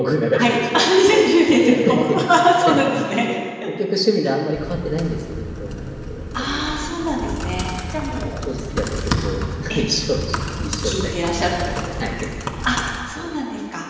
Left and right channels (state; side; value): identical; both; correlation 1.00